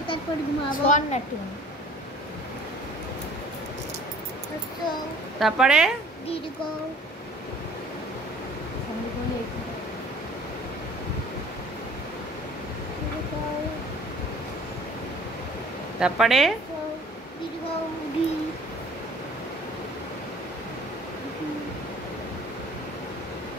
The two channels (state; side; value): normal; both; correlation 0.51